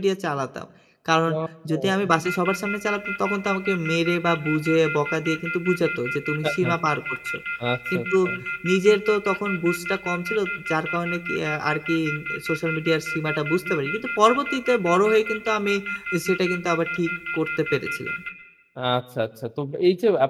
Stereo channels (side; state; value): both; identical; correlation 1.00